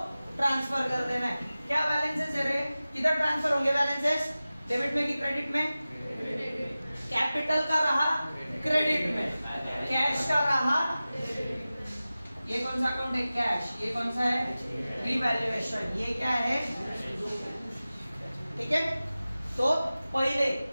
ट्रांसफर कर देना है। क्या बैलेंसेस है रे? किधर ट्रांसफर होंगे बैलेंसेस? डेबिट में कि क्रेडिट में? कैपिटल का रहा क्रेडिट में, कैश का रहा। ये कौन सा अकाउंट है? कैश। ये कौन सा है? रिवैल्यूएशन। ये क्या है? ठीक है। तो पहले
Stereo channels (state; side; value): inverted; both; correlation -0.96